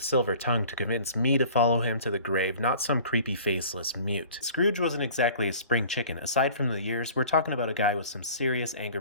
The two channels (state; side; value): inverted; both; correlation -0.46